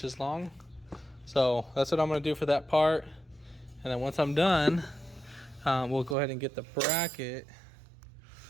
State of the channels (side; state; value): left; drops out; at 6.2 s